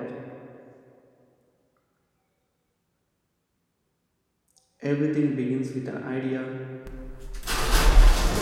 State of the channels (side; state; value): both; identical; correlation 1.00